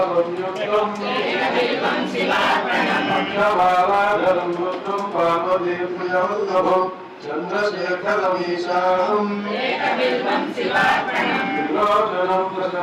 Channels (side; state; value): both; identical; correlation 1.00